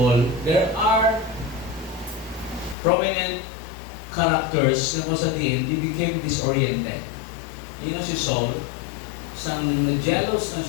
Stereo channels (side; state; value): right; drops out; at 2.8 s